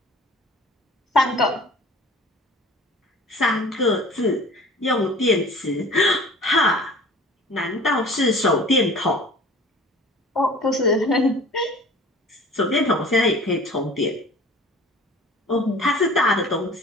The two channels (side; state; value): both; normal; correlation 0.45